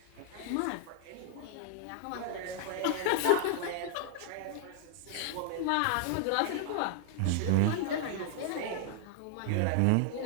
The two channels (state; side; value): different; both; correlation 0.00